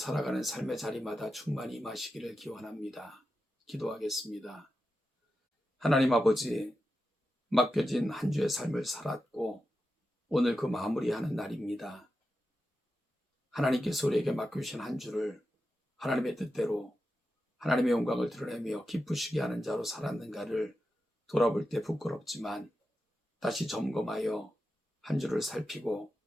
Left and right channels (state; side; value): normal; both; correlation 0.90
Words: 삶의 자리마다 충만히 임하시기를 기원합니다. 기도하겠습니다. 하나님 아버지, 맡겨진 한 주의 삶을 살았고 오늘 그 마무리하는 날입니다. 하나님께서 우리에게 맡겨주신 한 주를 하나님의 뜻대로 하나님의 영광을 드러내며 기쁘시게 하는 자로 살았는가를 돌아볼 때 부끄럽지만 다시 점검하여 한 주를 살피고